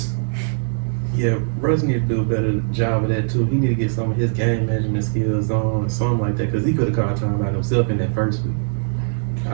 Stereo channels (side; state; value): left; silent; digital silence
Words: Yeah, Russ need to do a better job of that too. He need to get some of his game management skills on, something like that, because he could have called time out himself in that first week.